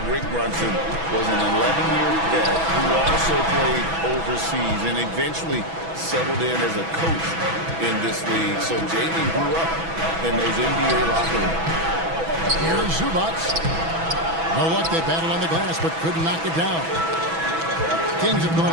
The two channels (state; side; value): late; left; 6.1 ms